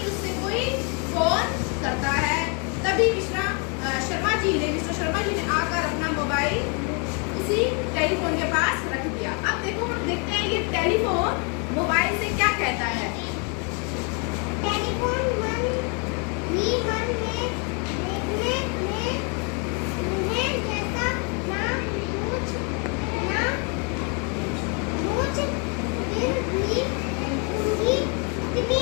उससे कोई फोन करता है। तभी मिस्टर शर्मा जी ने आकर अपना मोबाइल उसी टेलीफोन के पास रख दिया। अब देखो हम देखते हैं ये टेलीफोन मोबाइल से क्या कहता है। टेलीफोन मन ही मन में देखने में उन्हें जैसा ना पूछ फिर भी उनकी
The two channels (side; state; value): right; quieter; 35.8 dB